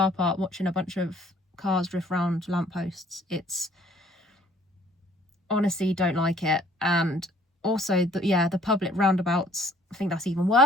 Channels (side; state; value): both; normal; correlation 0.59